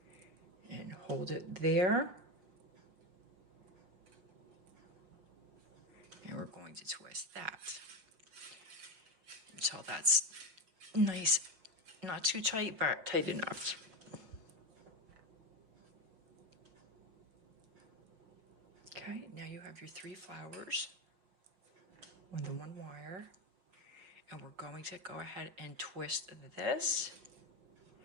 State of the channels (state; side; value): late; left; 5.6 ms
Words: and hold it there. And we're going to twist that until that's nice, not too tight, but tight enough. Okay, now you have your 3 flowers on the 1 wire, and we're going to go ahead and twist this.